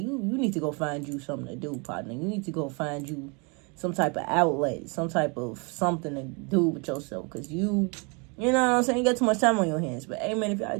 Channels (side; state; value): left; quieter; 31.8 dB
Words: you need to go find you something to do, partner. You need to go find you some type of outlet, some type of something to do with yourself. Because you know what I'm saying? You got too much time on your hands. But, hey, man, if y'all